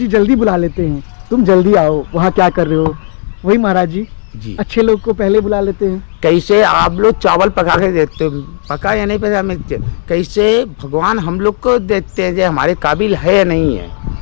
जल्दी बुला लेते हैं, तुम जल्दी आओ, वहाँ क्या कर रहे हो। वही महाराज जी अच्छे लोग को पहले बुला लेते हैं। कैसे आप लोग चावल पका के देते हो, पका या नहीं पका, मैं कैसे भगवान हम लोग को देते हैं जो हमारे काबिल है या नहीं है,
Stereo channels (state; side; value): silent; right; digital silence